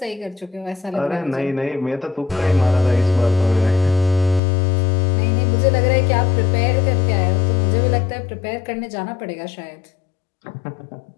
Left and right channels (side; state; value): right; drops out; at 4.4 s